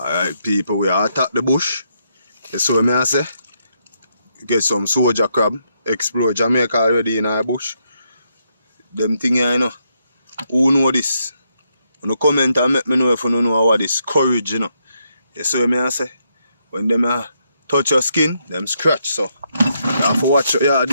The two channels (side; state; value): both; inverted; correlation -0.78